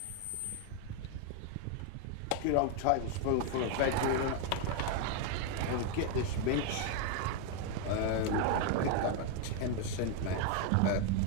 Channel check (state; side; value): different; both; correlation 0.01